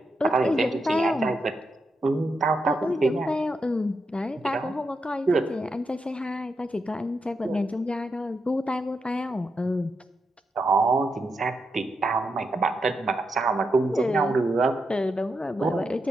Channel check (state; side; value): normal; both; correlation 0.84